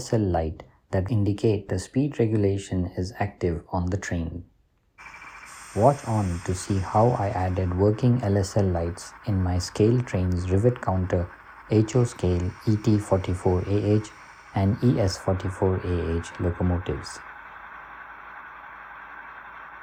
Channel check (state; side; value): identical; both; correlation 1.00